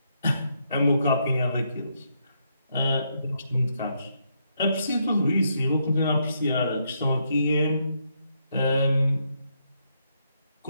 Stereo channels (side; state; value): both; inverted; correlation -0.77